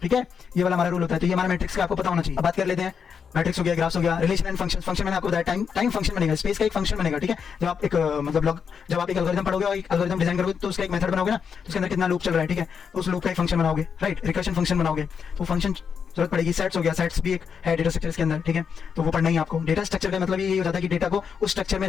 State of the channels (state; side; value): quieter; right; 6.6 dB